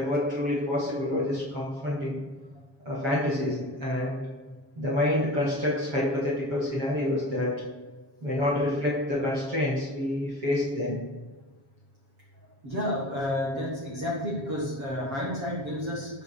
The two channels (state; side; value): late; left; 7.3 ms